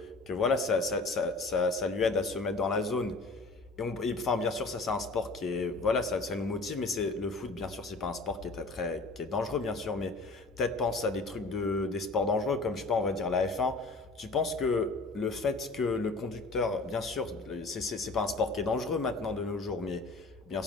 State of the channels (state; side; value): quieter; right; 3.4 dB